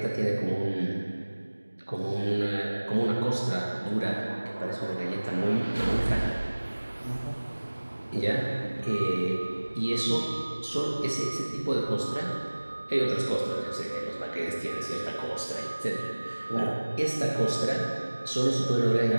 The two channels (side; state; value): both; inverted; correlation -1.00